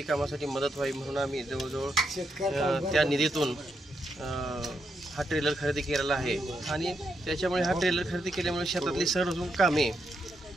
कामासाठी मदत व्हावी म्हणून आम्ही जवळजवळ त्या निधीतून हा ट्रेलर खरेदी केलेला आहे. आणि त्याच्यामुळे हा ट्रेलर खरेदी केल्यामुळे शेतातली सर्व कामे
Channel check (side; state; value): both; normal; correlation 0.81